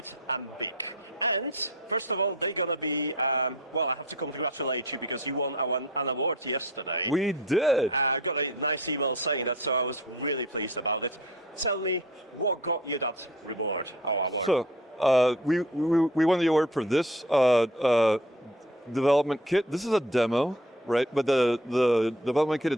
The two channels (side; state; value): both; normal; correlation 0.44